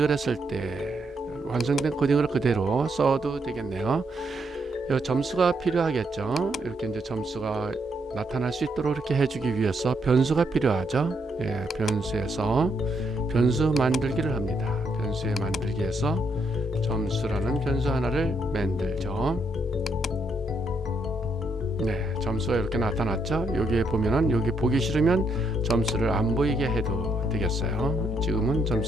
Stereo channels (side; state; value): both; normal; correlation 0.76